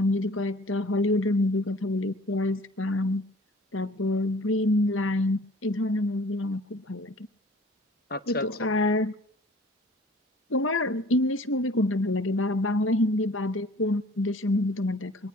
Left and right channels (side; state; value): both; normal; correlation 0.50